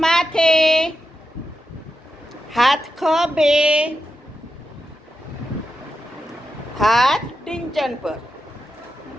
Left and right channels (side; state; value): both; normal; correlation 0.89